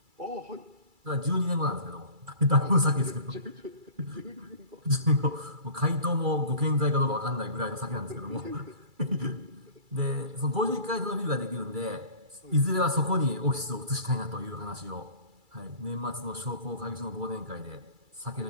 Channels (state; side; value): late; left; 2.3 ms